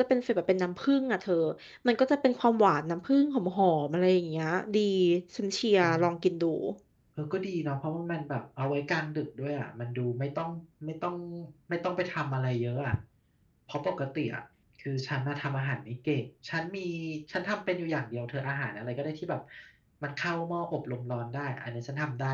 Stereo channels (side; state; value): both; identical; correlation 1.00